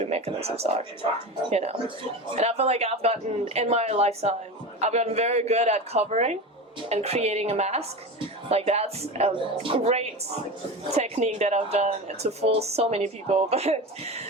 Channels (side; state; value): both; normal; correlation 0.26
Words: mechanisms are, And I feel like in my lifetime, I've gotten very good at covering and creating a mask. That's a great technique that I've done to fool so many people, but